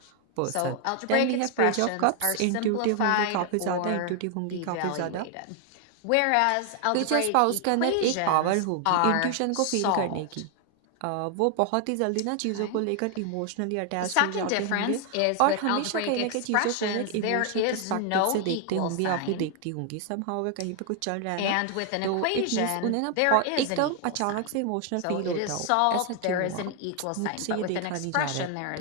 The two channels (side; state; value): both; different; correlation 0.00